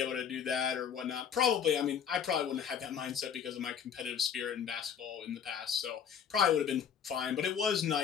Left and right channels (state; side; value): quieter; right; 7.8 dB